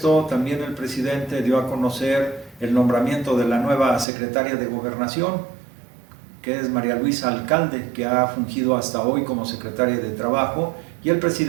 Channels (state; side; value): drops out; left; at 4.0 s